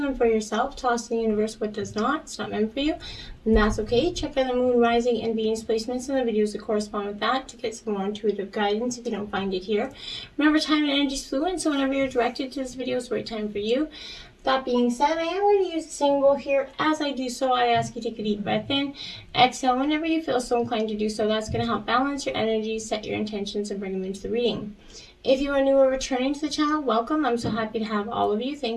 them for yourself, toss to the universe what does not. It's not meant for you, and that's okay. Check out the Moon, Rising, and Venus placements and the videos that correspond with that to get some more intuitive guidance if you don't find it here. Remember, time and energy is fluid, so whenever you're directed to this video, it's the right time for you. That being said, I am going to use a symbol here. As I do so, I ask you to take a deep breath in. Exhale whenever you feel so inclined to do so. That's going to help balance your energy, set your intentions, and bring them into the reading. If you are new or returning to the channel, welcome. I'm so happy to have all of you.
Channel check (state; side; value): identical; both; correlation 1.00